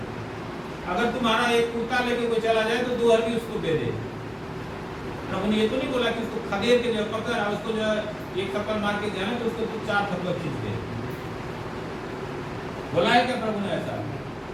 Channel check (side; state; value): both; identical; correlation 1.00